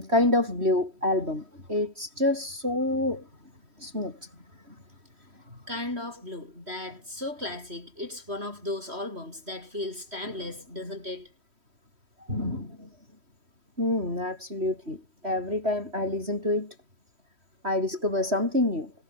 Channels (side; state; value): left; late; 3.1 ms